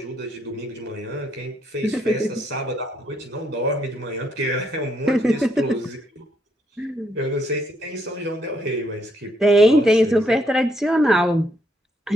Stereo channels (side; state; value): both; normal; correlation 0.73